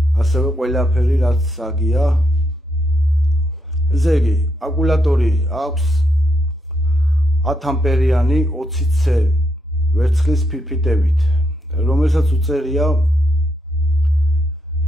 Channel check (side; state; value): both; normal; correlation 0.79